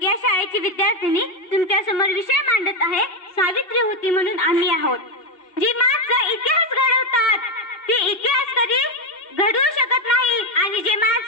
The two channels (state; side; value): late; right; 2.7 ms